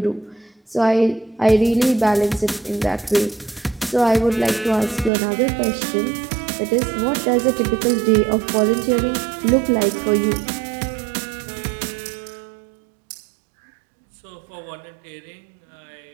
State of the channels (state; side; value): drops out; left; at 5.1 s